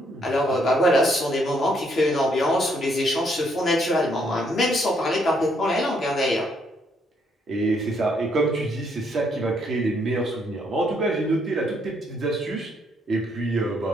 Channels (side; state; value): both; normal; correlation 0.71